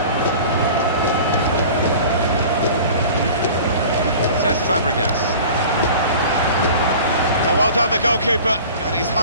Says Fabregas. Oh, well done, the goalkeeper, and he's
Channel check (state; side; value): inverted; both; correlation -0.41